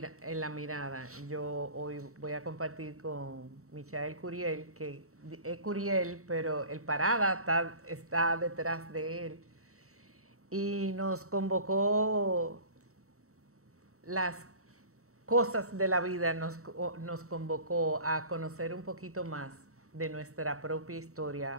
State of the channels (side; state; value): left; late; 0.64 ms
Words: Mirada, yo hoy voy a compartir con Michael Curiel, que es Curiel, pero el Parada está detrás de él. Y nos convocó las cosas de la vida, nos convocó a conocer un poquito más de nuestra propia